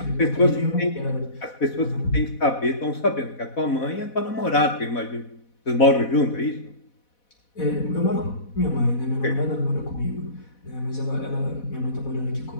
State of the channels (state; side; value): late; right; 4.1 ms